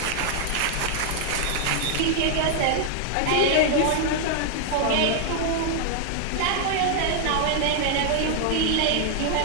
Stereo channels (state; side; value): different; both; correlation 0.00